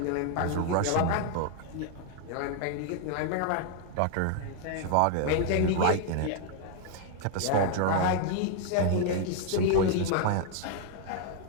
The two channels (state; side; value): different; both; correlation 0.00